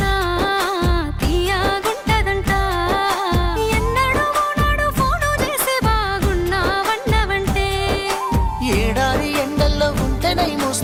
తీయగుంటదంట. ఎన్నడూ నాడు ఫోను చేసే బాగున్నావన్నవంటే ఏడాది ఎండల్లో ఉంటేనై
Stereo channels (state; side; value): identical; both; correlation 1.00